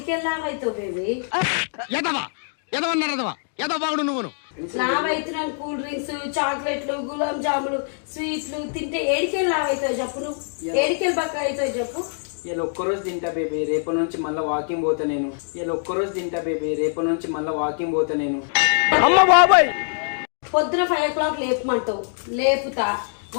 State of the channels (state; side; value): silent; right; digital silence